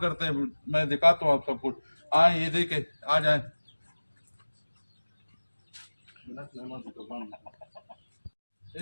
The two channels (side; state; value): both; inverted; correlation -1.00